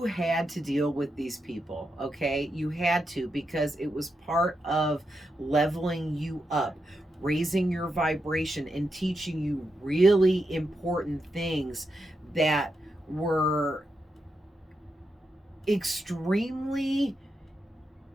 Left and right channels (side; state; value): both; normal; correlation 0.85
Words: had to deal with these people, okay? You had to, because it was part of leveling you up, raising your vibration, and teaching you really important things that were extremely